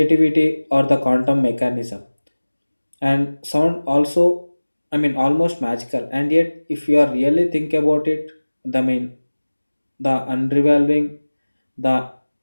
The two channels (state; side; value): inverted; both; correlation -1.00